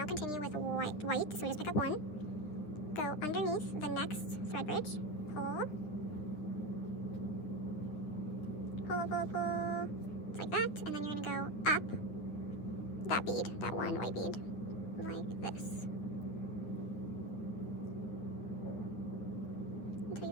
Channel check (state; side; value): late; right; 9.9 ms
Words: continue with white. So we just pick up 1, go underneath the next thread bridge, pull. It's like that, and then you're gonna go up that bead, that 1 white bead, like this. Until you